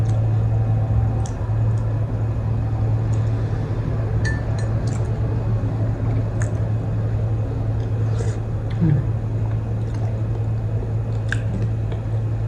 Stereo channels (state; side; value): identical; both; correlation 1.00